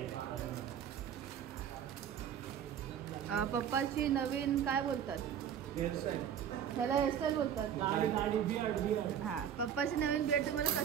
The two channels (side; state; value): left; quieter; 9.1 dB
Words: पप्पाची नवीन काय बोलतात ह्याला, हेअरस्टाईल बोलतात. हा, पप्पाची नवीन बियर्ड तुम्हाला